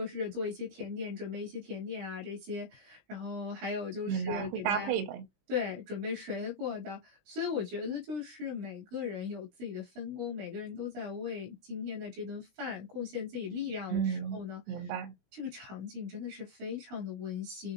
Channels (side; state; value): left; late; 20 ms